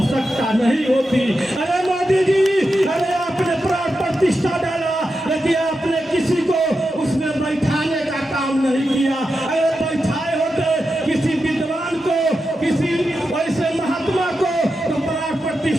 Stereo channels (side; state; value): both; normal; correlation 0.89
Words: नहीं होती। अरे मोदी जी, अरे आपने प्राण प्रतिष्ठा डाला लेकिन आपने किसी को उसमें बैठाने का काम नहीं किया। अरे बैठाए होते किसी विद्वान को, किसी ऐसे महात्मा को तो प्राण